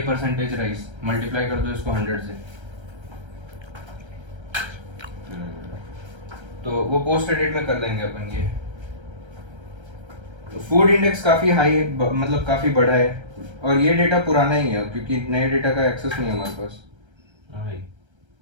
परसेंटेज राइज मल्टीप्लाई कर दो इसको 100 से, तो वो पोस्ट एडिट में कर देंगे अपन ये। फूड इंडेक्स काफी हाई है, मतलब काफी बड़ा है। और ये डेटा पुराना ही है क्योंकि नए डेटा का एक्सेस नहीं है हमारे पास। वही।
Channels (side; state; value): left; late; 1.3 ms